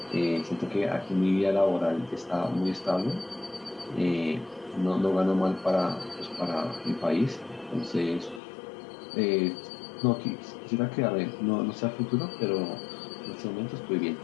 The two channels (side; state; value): right; drops out; at 8.4 s